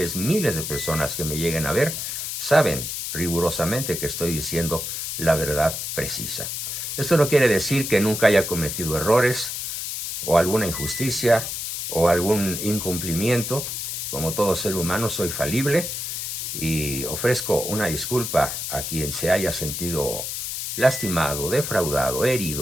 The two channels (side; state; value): left; noise; hiss, 4 dB below the sound